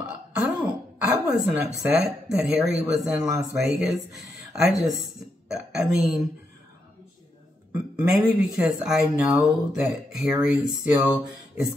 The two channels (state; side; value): normal; both; correlation 0.82